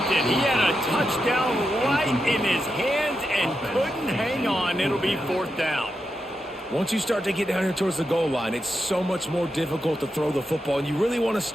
it. He had a touchdown right in his hands and couldn't hang on. It'll be 4th down. Once you start to get down here towards the goal line, it's so much more difficult to throw the football, and you really want to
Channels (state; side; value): normal; both; correlation 0.87